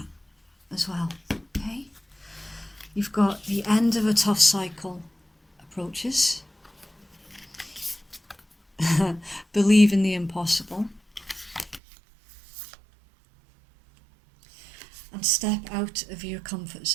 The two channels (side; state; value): left; drops out; at 11.8 s